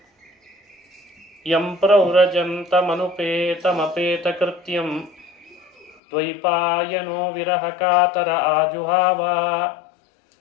ಯಂ ಪ್ರವ್ರಜಂತಮನುಪೇತಮಪೇತಕೃತ್ಯಂ ದ್ವೈಪಾಯನೋ ವಿರಹಕಾತರ ಆಜುಹಾವ.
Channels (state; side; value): drops out; right; at 6.0 s